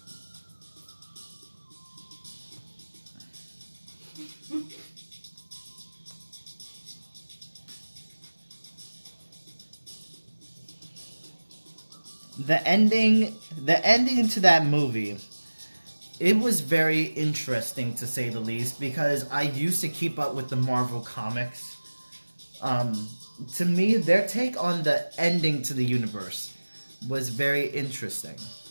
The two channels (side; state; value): both; inverted; correlation -1.00